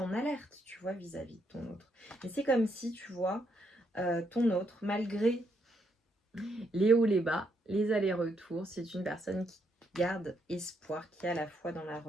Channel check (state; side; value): normal; both; correlation 0.76